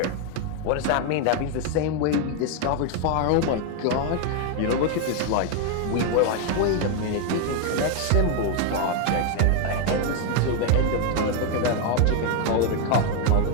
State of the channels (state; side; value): different; both; correlation 0.01